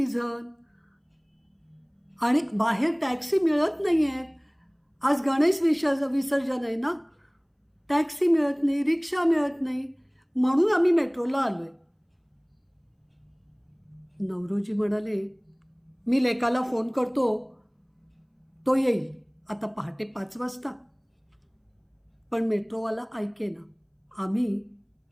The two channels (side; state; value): both; identical; correlation 1.00